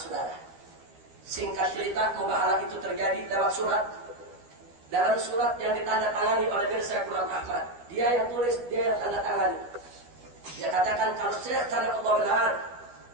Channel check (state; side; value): late; left; 12 ms